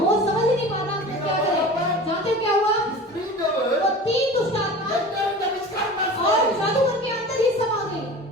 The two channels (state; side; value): normal; both; correlation 0.36